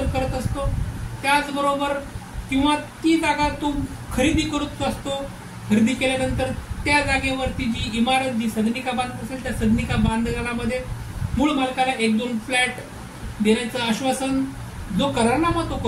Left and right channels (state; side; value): identical; both; correlation 1.00